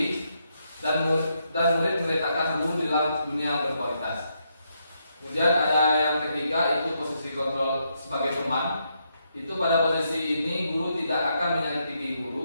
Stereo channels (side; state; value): both; inverted; correlation -0.79